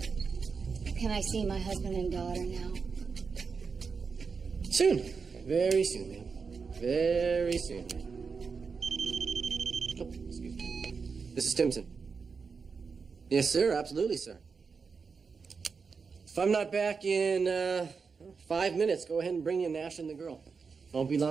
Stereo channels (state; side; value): quieter; left; 5.2 dB